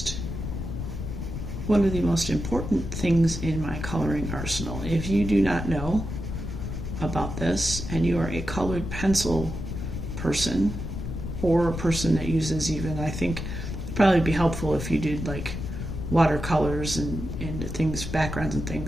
one of the most important things in my coloring arsenal. If you do not know about this and you are a colored pencil person, or a person that uses even, I think it'd probably be helpful if you did like watercolors and things, backgrounds and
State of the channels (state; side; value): noise; left; rumble, 6 dB below the sound